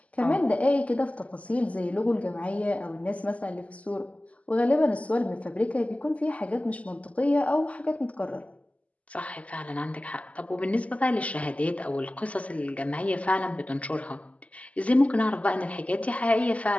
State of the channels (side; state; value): right; late; 0.068 ms